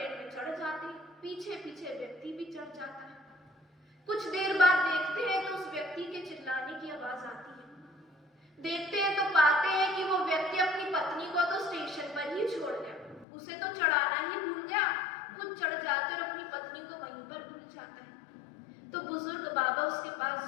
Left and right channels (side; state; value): right; drops out; at 13.2 s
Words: में चढ़ जाते हैं, पीछे पीछे व्यक्ति भी चढ़ जाता है। कुछ देर बाद देखते हैं तो उस व्यक्ति के चिल्लाने की आवाज आती है। देखते हैं तो पाते हैं कि वो व्यक्ति अपनी पत्नी को तो स्टेशन पर ही छोड़ गया, उसे तो चढ़ाना ही भूल गया, खुद चढ़ जाते और अपनी पत्नी को वहीं पर भूल जाता है। तो बुजुर्ग बाबा उसके पास